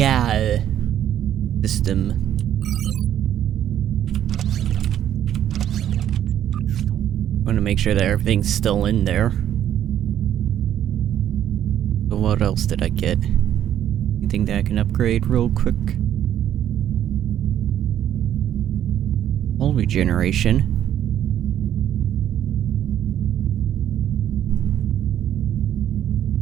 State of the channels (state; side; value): quieter; left; 10.7 dB